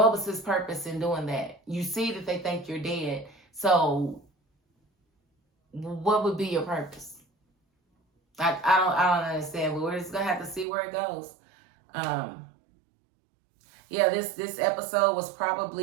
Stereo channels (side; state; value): left; drops out; at 10.7 s